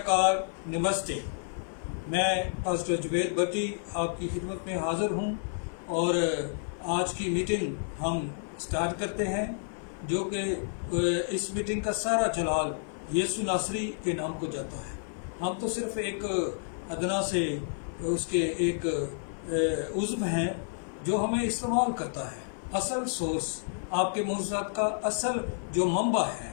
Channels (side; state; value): right; silent; 58 dB below the other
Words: नमस्ते। मैं पास्टर जुबैर भट्टी आपकी खिदमत में हाज़िर हूँ और आज की मीटिंग हम स्टार्ट करते हैं, जो कि इस मीटिंग का सारा जलाल यीशु नासरी के नाम को जाता है। हम तो सिर्फ एक अदना से उसके एक उज़्व हैं जो हमें इस्तेमाल करता है। असल सोर्स, आपके मोज़ात का असल जो मंबा